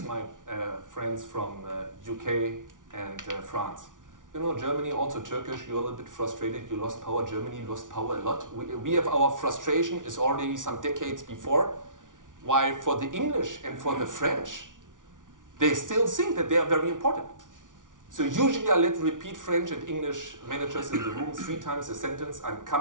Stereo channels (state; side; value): late; left; 0.88 ms